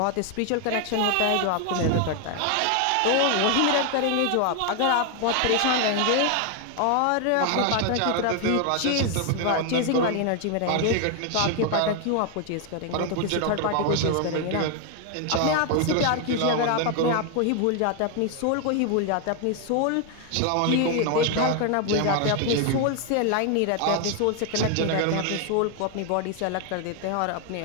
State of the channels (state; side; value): different; both; correlation 0.01